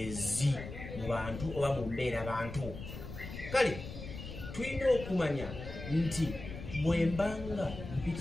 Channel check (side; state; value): left; noise; rumble, 10 dB below the sound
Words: mu bantu oba mu mbeera bantu. Kale tulina okumanya nti bwe mbanga